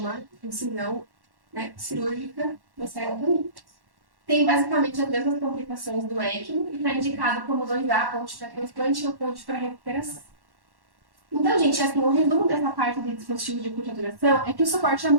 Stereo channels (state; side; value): late; left; 1.1 ms